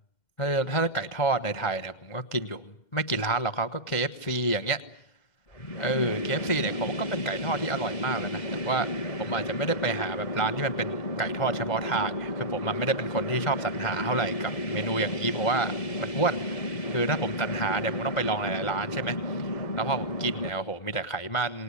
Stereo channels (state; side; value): late; right; 2.1 ms